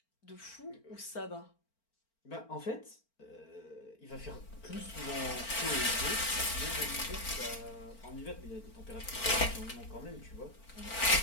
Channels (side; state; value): right; late; 4.4 ms